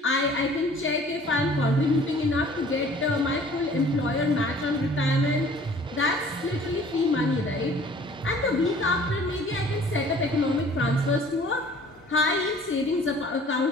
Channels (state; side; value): normal; both; correlation 0.51